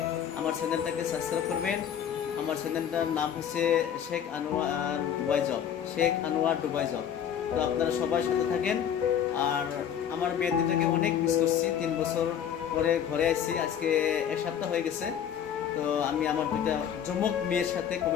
আমার চ্যানেলটাকে সাবস্ক্রাইব করবেন। আমার চ্যানেলটার নাম হচ্ছে Sheikh Anwar Dubai job, Sheikh Anwar Dubai job. তো আপনারা সবাই সাথে থাকেন। আর আমার মেয়ের দিনটাকে অনেক মিস করছি, 3 বছর পরে ঘরে আসছি, আজকে 1 সপ্তাহ হয়ে গেছে। তো আমি আমার দুইটা যমক মেয়ের সাথে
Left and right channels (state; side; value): quieter; right; 9.0 dB